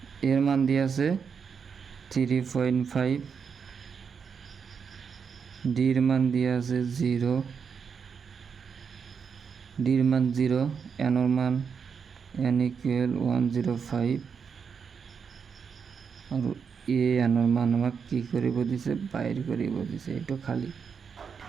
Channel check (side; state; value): left; quieter; 6.3 dB